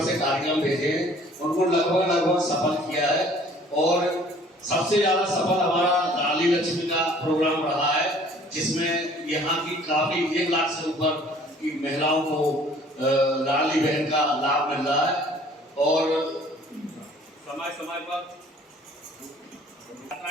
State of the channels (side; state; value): both; normal; correlation 0.54